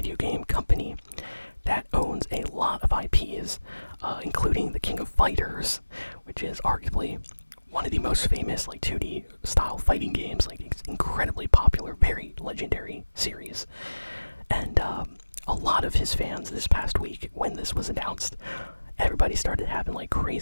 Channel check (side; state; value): both; inverted; correlation -1.00